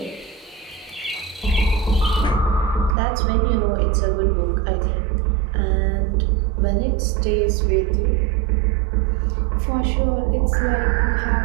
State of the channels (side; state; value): left; drops out; at 3.0 s